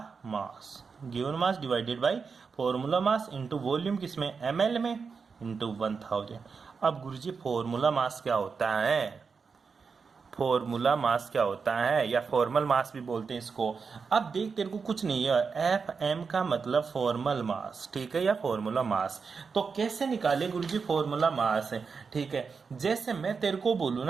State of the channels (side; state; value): left; quieter; 5.3 dB